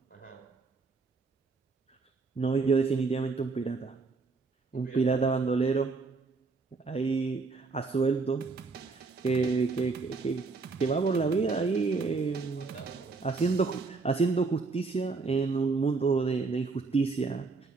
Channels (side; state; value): left; quieter; 4.2 dB